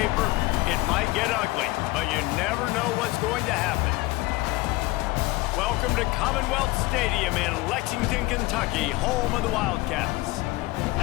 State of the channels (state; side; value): quieter; right; 21.0 dB